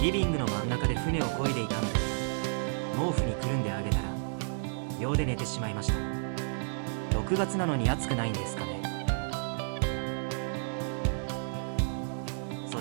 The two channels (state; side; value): silent; left; 56 dB below the other